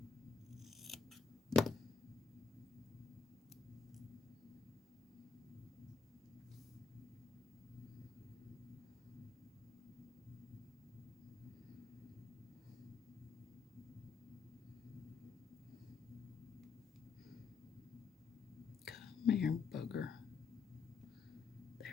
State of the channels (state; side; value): quieter; right; 5.5 dB